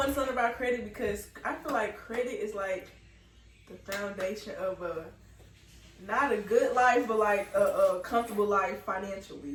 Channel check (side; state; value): both; identical; correlation 1.00